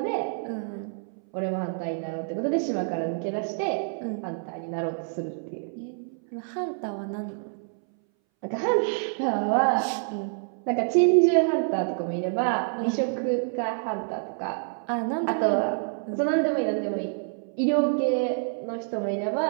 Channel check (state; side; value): silent; left; 60 dB below the other